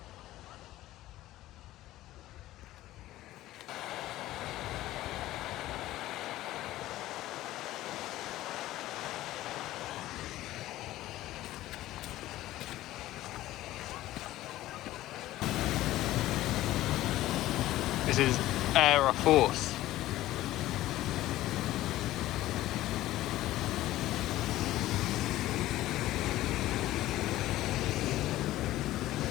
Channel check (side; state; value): right; quieter; 15.5 dB